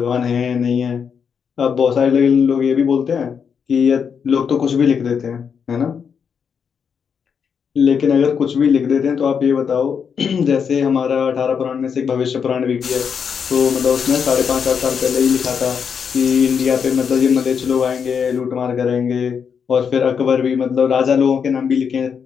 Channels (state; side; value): quieter; right; 6.8 dB